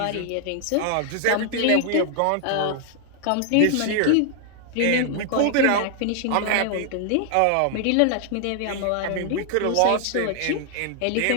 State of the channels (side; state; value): both; different; correlation 0.00